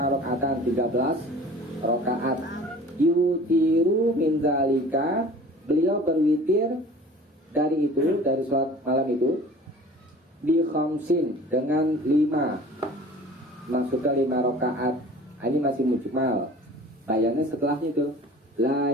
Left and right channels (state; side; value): normal; both; correlation 0.44